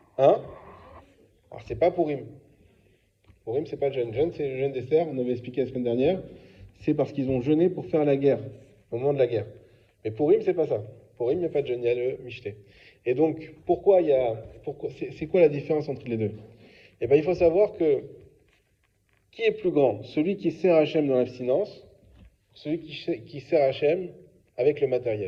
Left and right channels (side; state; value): both; identical; correlation 1.00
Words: Hein? Alors, c'est pas Purim. Purim, c'est pas le jeûne. Jeûne, c'est le jeûne d'Esther, on avait expliqué la semaine dernière. C'est parce qu'ils ont jeûné pour faire la guerre, au moment de la guerre. Mais Purim, c'est pas ça. Purim, il n'y a pas de jeûne, il y a le michté. Et donc, c'est quoi la différence entre les deux? Eh bien, il faut savoir que qui est plus grand? Celui qui sert Hachem dans l'abstinence, celui qui sert Hachem avec le